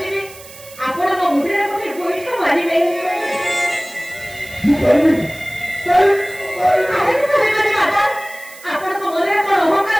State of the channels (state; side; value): noise; right; hiss, 19 dB below the sound